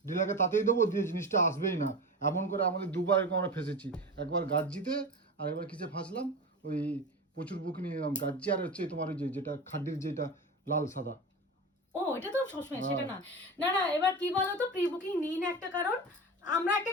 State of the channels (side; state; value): both; normal; correlation 0.27